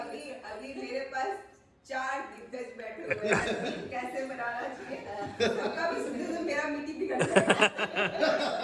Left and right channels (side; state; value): both; identical; correlation 1.00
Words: मेरे पास 4 दिग्गज बैठे हुए हैं, कैसे बनाना चाहिए सबका भी सुनते तो मेरा मीटिंग बिगड़